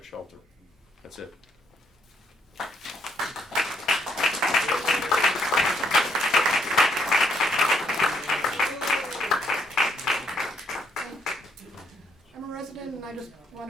shelter. That's it. I'm a resident and I just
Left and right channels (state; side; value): normal; both; correlation 0.72